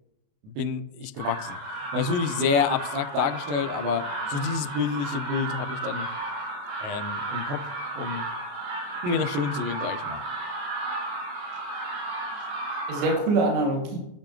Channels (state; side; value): late; left; 28 ms